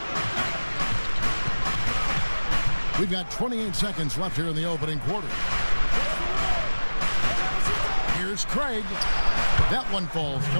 We've got 28 seconds left here in the opening quarter. Here's Craig. That one falls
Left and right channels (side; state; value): both; inverted; correlation -1.00